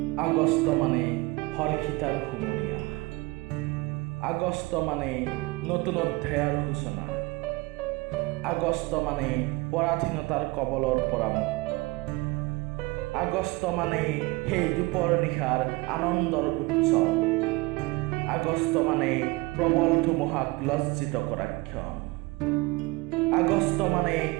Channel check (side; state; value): left; quieter; 23.2 dB